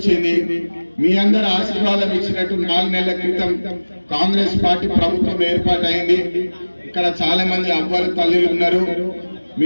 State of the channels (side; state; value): both; inverted; correlation -1.00